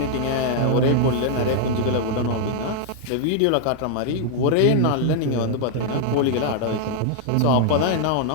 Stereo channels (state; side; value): different; both; correlation -0.01